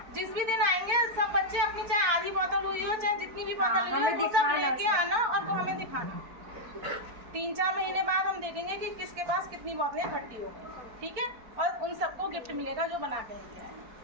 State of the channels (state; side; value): late; left; 4.4 ms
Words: जिस भी दिन आएंगे सब बच्चे अपनी चाहे आधी बोतल हुई हो चाहे जितनी भी बोतल हुई हो वो सब लेके आना और वो हमें दिखाना। 3-4 महीने बाद हम देखेंगे कि किसके पास कितनी बोतलें इकट्ठी हो गई, ठीक है, और उन सबको गिफ्ट मिलेगा जो बना के लेके आए,